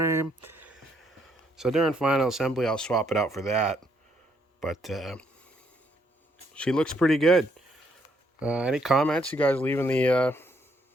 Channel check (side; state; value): both; normal; correlation 0.72